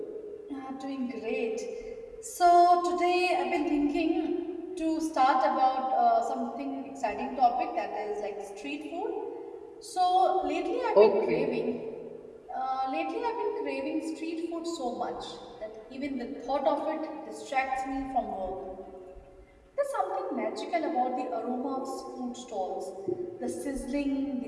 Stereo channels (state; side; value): identical; both; correlation 1.00